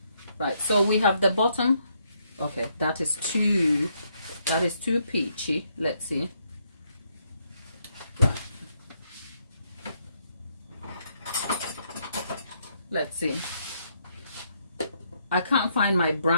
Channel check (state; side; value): inverted; both; correlation -0.74